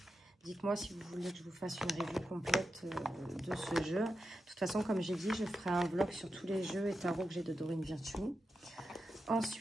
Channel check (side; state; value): both; normal; correlation 0.89